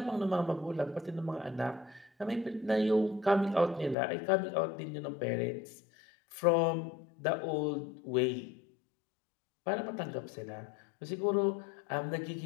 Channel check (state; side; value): drops out; right; at 4.0 s